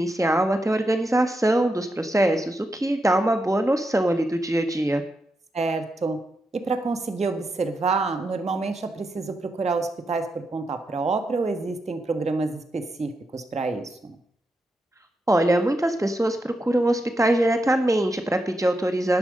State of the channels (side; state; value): both; normal; correlation 0.85